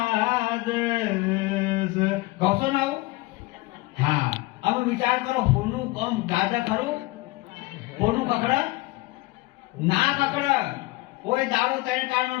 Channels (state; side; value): quieter; right; 21.0 dB